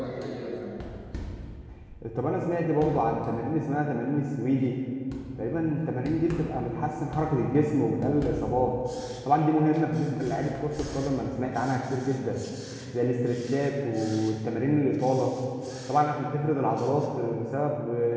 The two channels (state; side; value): identical; both; correlation 1.00